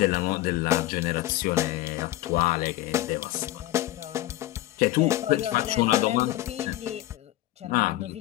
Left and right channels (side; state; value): right; quieter; 15.8 dB